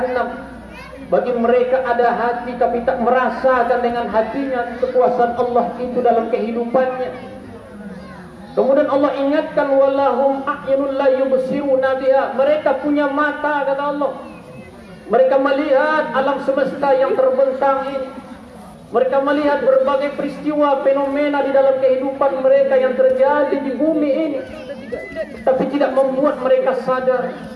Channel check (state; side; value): identical; both; correlation 1.00